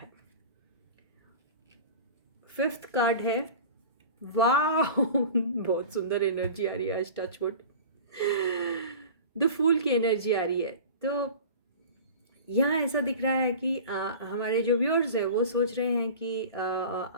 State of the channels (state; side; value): inverted; both; correlation -0.38